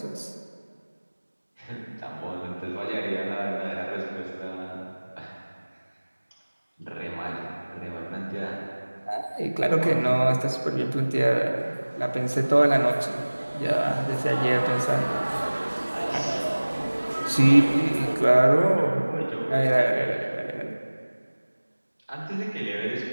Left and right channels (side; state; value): both; inverted; correlation -1.00